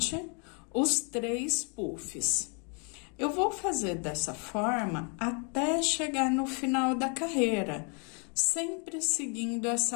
os 3 puffs. Eu vou fazer dessa forma até chegar no final da carreira, sempre seguindo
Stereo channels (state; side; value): quieter; right; 36.9 dB